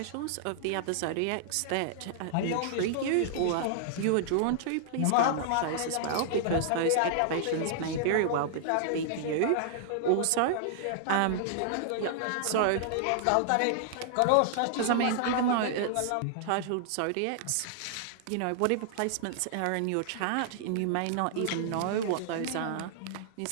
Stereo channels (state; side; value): different; both; correlation -0.01